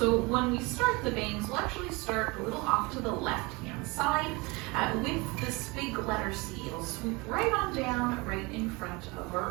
when we start the bangs, we'll actually start a little off to the left-hand side with this big letter C. It'll swoop right on down, right in front of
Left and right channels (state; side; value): quieter; left; 25.8 dB